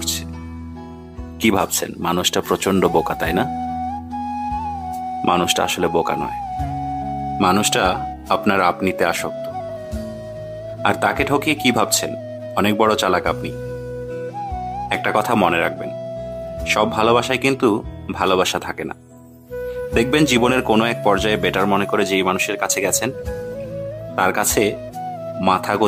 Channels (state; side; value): identical; both; correlation 1.00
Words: কি ভাবছেন মানুষটা প্রচন্ড বোকা, তাই না? মানুষটা আসলে বোকা নয়, মানুষটা আপনার আপনিতে আসক্ত। আর তাকে ঠকিয়ে কি ভাবছেন অনেক বড় চালাক আপনি। একটা কথা মনে রাখবেন, সব ভালোবাসায় কিন্তু ভালোবাসা থাকে না। দেখবেন জীবনের কোনো এক পর্যায়ে বেটার মনে করে যেই মানুষের কাছে গেছেন, তার কাছে মাথা